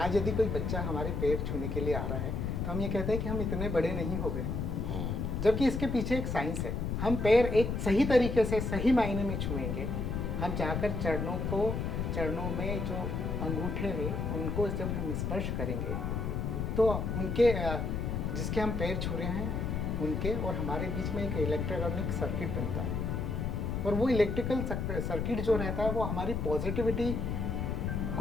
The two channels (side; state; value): left; noise; rumble, 1 dB below the sound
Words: यदि कोई बच्चा हमारे पैर छूने के लिए आ रहा है तो हम ये कहते हैं कि हम इतने बड़े नहीं हो गए, जबकि इसके पीछे एक साइंस है। हम पैर एक सही तरीके से सही मायने में छुएंगे। हम जाकर चरणों में जो अंगूठे हैं उनको जब हम स्पर्श करेंगे तो उनके जिसके हम पैर छू रहे हैं उनके और हमारे बीच में एक इलेक्ट्रॉनिक सर्किट बनता है और वो इलेक्ट्रिकल सर्किट जो रहता है वो हमारी पॉजिटिविटी